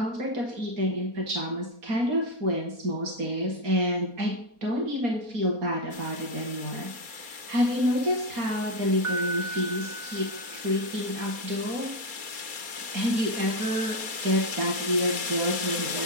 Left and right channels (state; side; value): late; left; 4.2 ms